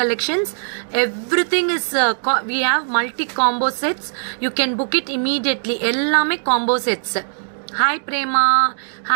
collections. Everything is we have multi combo sets. You can book it immediately. எல்லாமே combo sets. Hi Prema,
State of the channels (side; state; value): left; silent; digital silence